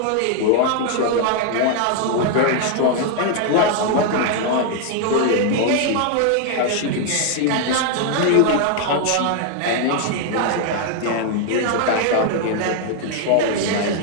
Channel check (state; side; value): different; both; correlation 0.00